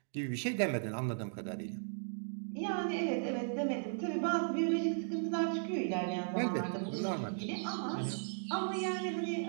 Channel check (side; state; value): left; silent; digital silence